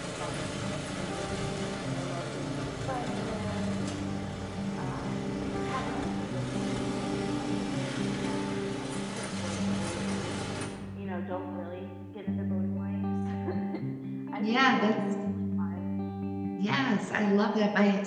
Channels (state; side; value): identical; both; correlation 1.00